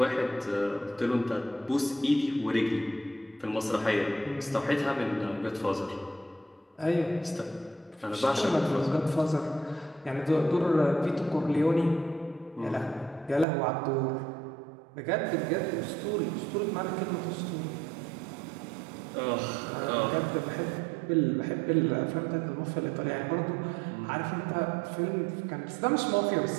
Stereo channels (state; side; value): drops out; left; at 13.5 s